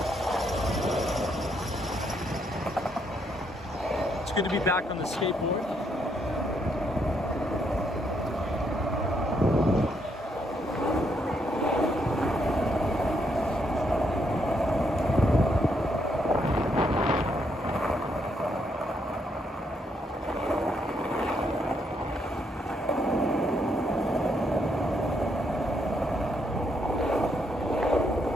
Good to be back on the skateboard.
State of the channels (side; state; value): both; normal; correlation 0.75